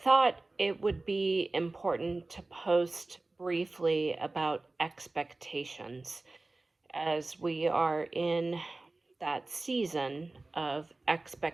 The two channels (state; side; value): quieter; left; 3.2 dB